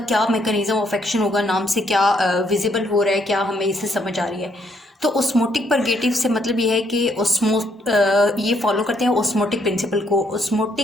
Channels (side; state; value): both; normal; correlation 0.71